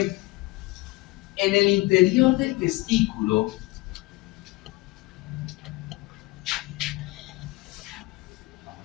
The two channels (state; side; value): quieter; right; 22.0 dB